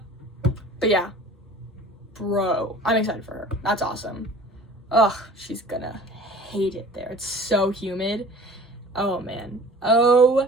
yeah. Bro, I'm excited for her. That's awesome. Ugh, she's gonna hate it there. It's so humid. Oh man.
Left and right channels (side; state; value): both; normal; correlation 0.45